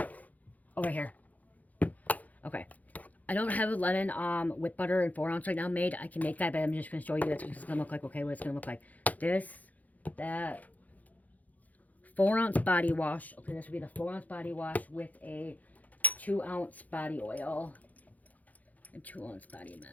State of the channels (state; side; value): late; right; 0.078 ms